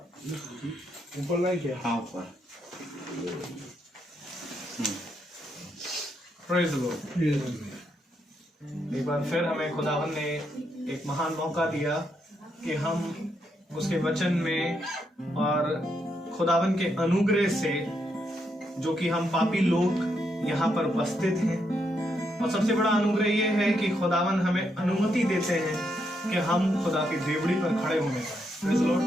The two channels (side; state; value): both; normal; correlation 0.79